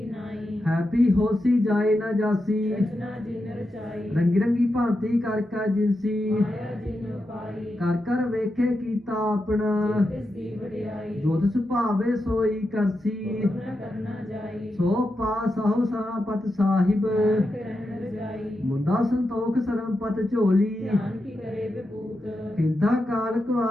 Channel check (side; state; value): both; normal; correlation 0.88